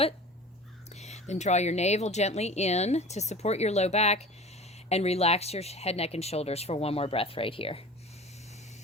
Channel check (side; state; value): both; normal; correlation 0.39